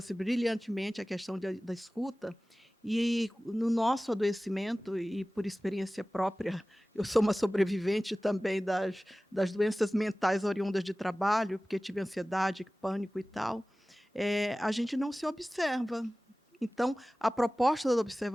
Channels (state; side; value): normal; both; correlation 0.97